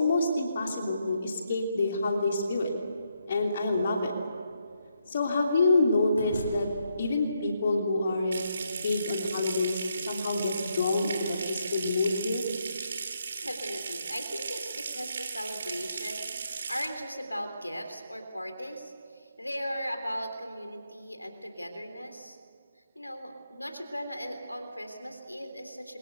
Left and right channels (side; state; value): both; inverted; correlation -0.79